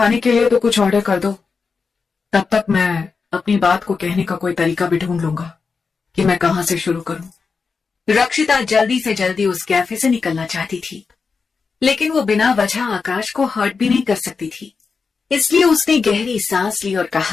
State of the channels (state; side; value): quieter; right; 5.0 dB